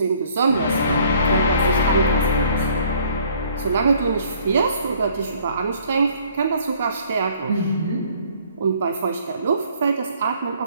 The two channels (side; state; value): both; inverted; correlation -0.59